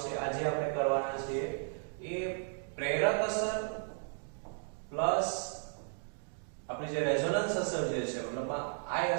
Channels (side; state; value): left; silent; 55 dB below the other